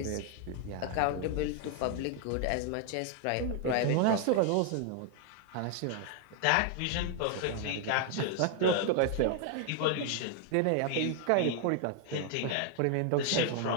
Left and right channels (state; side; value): different; both; correlation 0.00